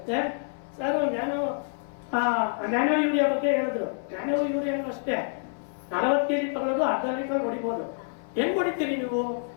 ಸರ್? ನ್ಯಾನೋ ಯೂರಿಯಾ ಬಗ್ಗೆ ಹೇಳಿದ್ರು. ನ್ಯಾನೋ ಯೂರಿಯಾನು ಅಷ್ಟೇ 40 kg ತಗೊಳ್ಳೋದು, ಅರ್ಧ ಲೀಟರ್ ಹೊಡಿಬೋದು. ಹೆಂಗ್ ಹೊಡಿತೀರಿ ನೀವು?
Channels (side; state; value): right; silent; 60 dB below the other